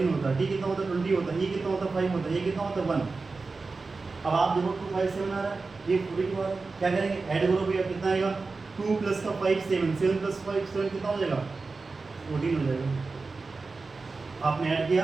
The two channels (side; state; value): left; quieter; 4.0 dB